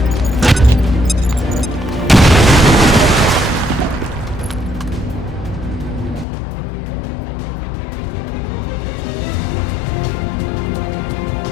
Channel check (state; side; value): drops out; right; at 6.2 s